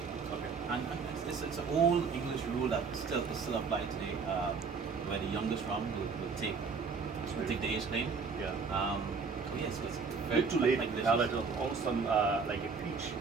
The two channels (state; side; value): quieter; left; 5.2 dB